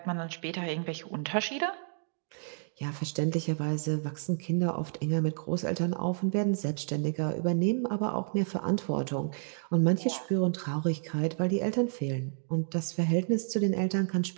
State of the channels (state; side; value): silent; left; digital silence